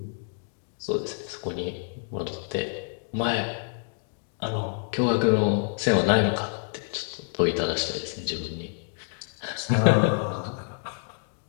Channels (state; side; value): silent; right; 60 dB below the other